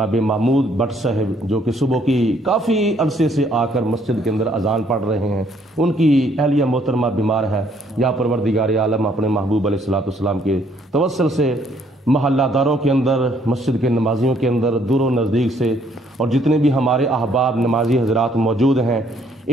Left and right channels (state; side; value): normal; both; correlation 0.66